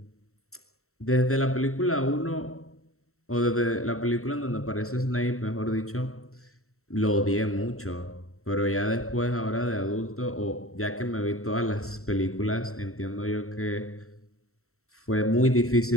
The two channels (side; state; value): right; late; 0.63 ms